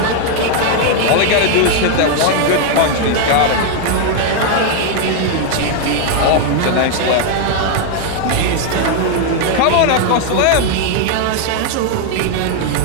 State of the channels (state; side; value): different; both; correlation 0.00